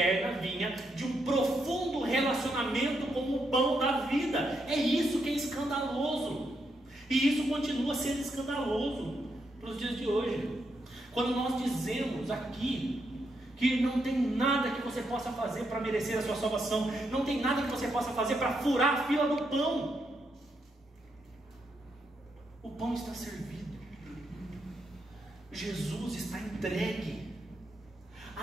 vinha de um profundo relacionamento com o pão da vida. É isso que é escandaloso, e isso continua sendo escandaloso para os dias de hoje. Quando nós dizemos aqui que não tem nada que você possa fazer para merecer a sua salvação, não tem nada que você possa fazer para furar a fila do pão. O pão está servido, Jesus está entregue,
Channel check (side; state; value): both; normal; correlation 0.80